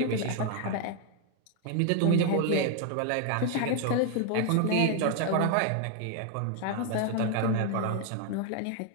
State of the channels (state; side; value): different; both; correlation 0.01